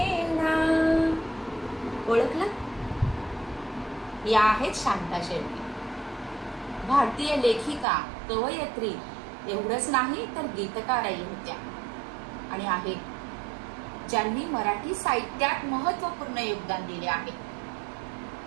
ओळखलं? या आहेत शांता शेळके, भारतीय लेखिका, कवयित्री, एवढंच नाही तर गीतकारही होत्या आणि आहेत ज्यांनी मराठी साहित्यात महत्वपूर्ण योगदान दिले आहे.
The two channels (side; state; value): left; drops out; at 7.9 s